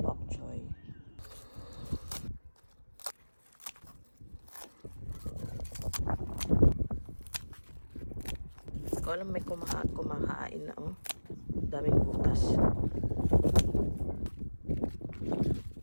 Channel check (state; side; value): inverted; both; correlation -1.00